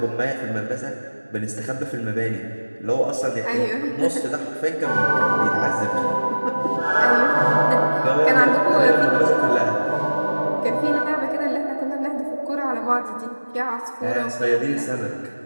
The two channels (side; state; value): both; inverted; correlation -1.00